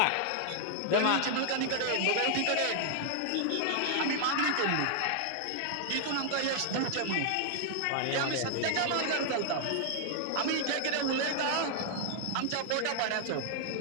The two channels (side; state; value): both; different; correlation 0.00